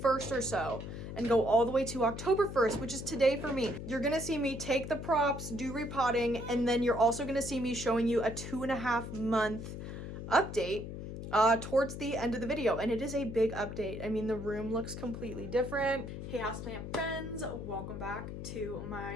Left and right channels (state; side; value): noise; left; hum, 8 dB below the sound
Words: or so and go all the way to October 1st, which is today for me. You're going to see me take the props, do repotting, and then you're also going to see me showing you a 2.5 month update towards the end of the video, and it is a big update. I mean, the room looks completely different. Hey houseplant friends, welcome back to